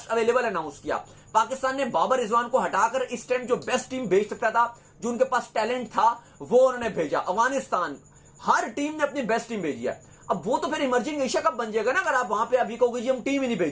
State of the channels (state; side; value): identical; both; correlation 1.00